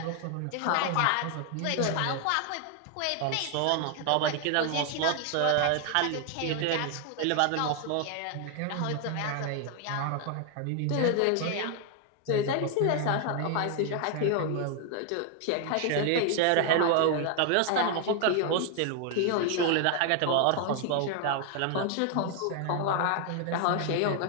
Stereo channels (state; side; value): different; both; correlation 0.00